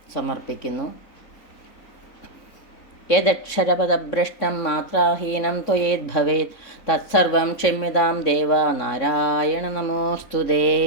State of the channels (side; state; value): right; late; 3.6 ms